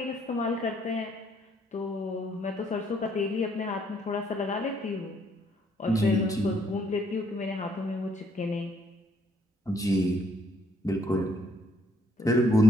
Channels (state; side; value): normal; both; correlation 0.67